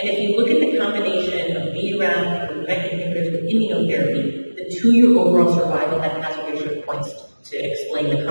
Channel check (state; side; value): inverted; both; correlation -1.00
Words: if you look at the combination of BRAF with MEK inhibitors with immunotherapy, the 2-year overall survival had hazard ratio points to explain the